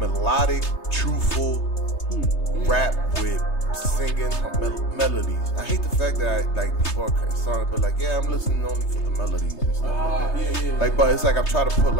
truthful rap with singing melodies. I hate the fact that people are starting to be like, yeah, I'm listening only for the melodies and stuff like that. Yeah. Like, but it's like I'm trying to put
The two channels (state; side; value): late; right; 3.3 ms